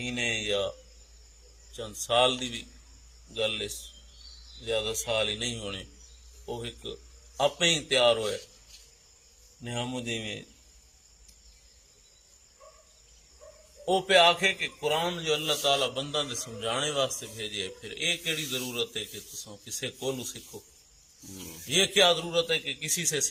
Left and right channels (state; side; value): identical; both; correlation 1.00